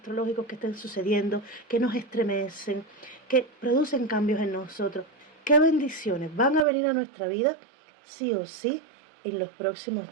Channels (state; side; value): drops out; left; at 6.7 s